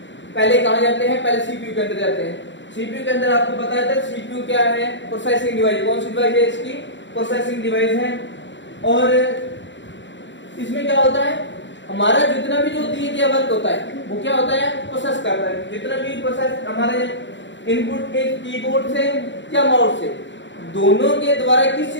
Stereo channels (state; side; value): late; right; 0.54 ms